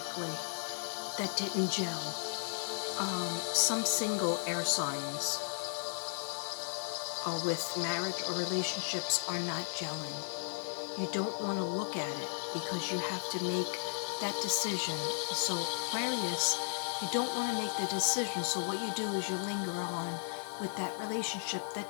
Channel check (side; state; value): right; silent; 54 dB below the other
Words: that didn't gel. Some single air signs with marriage or relationships are not gelling. You don't want to look at it because you have to make that decision. So Aquarius, you don't want to make the decision. So what you do is you linger on with that relationship